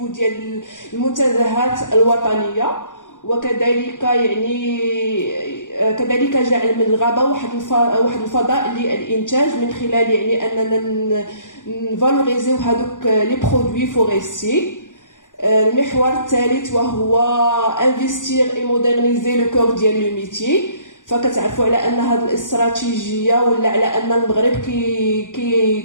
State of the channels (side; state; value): right; late; 0.87 ms